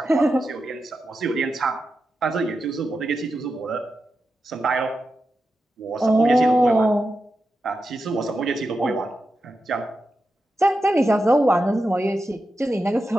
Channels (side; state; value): both; normal; correlation 0.90